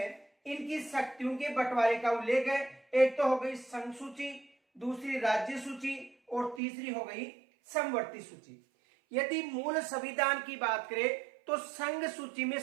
इनकी शक्तियों के बंटवारे का उल्लेख है। एक तो हो गई संघ सूची, दूसरी राज्य सूची और तीसरी हो गई समवर्ती सूची। यदि मूल संविधान की बात करें तो संघ सूची में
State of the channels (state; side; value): drops out; left; at 6.6 s